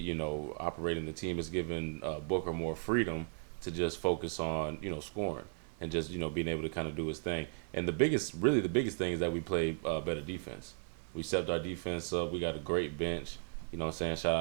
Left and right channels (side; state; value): left; silent; 54 dB below the other